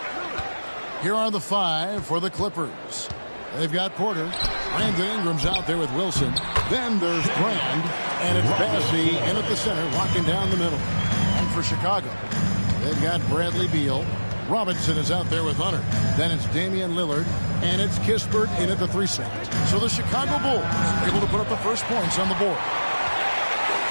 Here are the 5 for the Clippers. They've got Porter. Brandon Ingram's out there with Wilson. Then there's Brand, and it's Bassey in at the center, locking down the middle. And for Chicago, they've got Bradley Beal. Robinson is out there with Hunter. Then it's Damian Lillard, and it's Kispert in at the 3 slot. So the Chicago Bulls able to put up the first points on the board.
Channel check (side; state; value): both; inverted; correlation -1.00